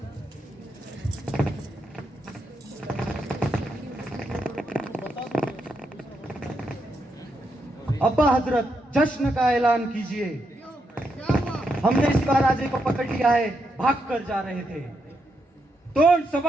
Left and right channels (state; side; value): normal; both; correlation 0.81